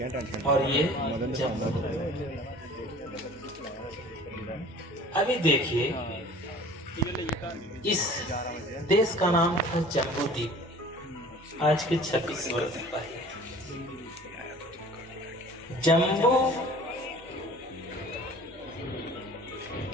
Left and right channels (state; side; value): normal; both; correlation 0.46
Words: और ये जम्बू। अभी देखिए, इस देश का नाम था जम्बू द्वीप आज के 26 वर्ष पहले। जम्बू